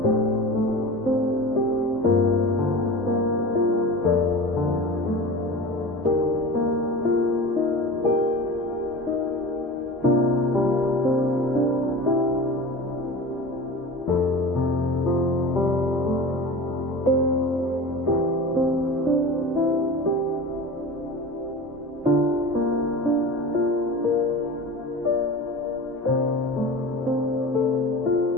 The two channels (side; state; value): both; normal; correlation 0.33